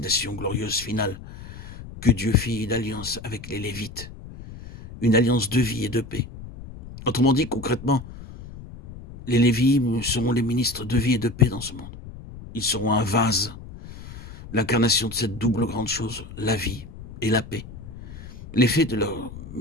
glorieuse finale, que Dieu fit une alliance avec les Lévites, une alliance de vie et de paix. Autrement dit, concrètement, les Lévites seront les ministres de vie et de paix dans ce monde. Ils seront un vase, l'incarnation de cette double grande chose, la vie et la paix. L'effet de leur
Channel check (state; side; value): noise; left; rumble, 14 dB below the sound